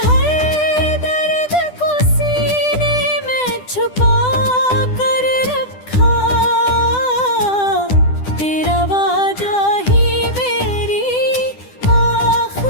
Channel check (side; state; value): right; late; 10 ms